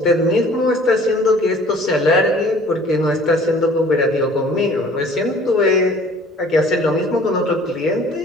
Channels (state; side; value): normal; both; correlation 0.51